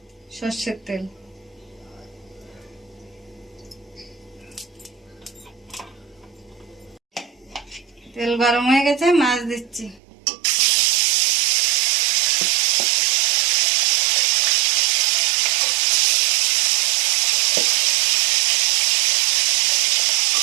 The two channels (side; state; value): left; drops out; at 10.0 s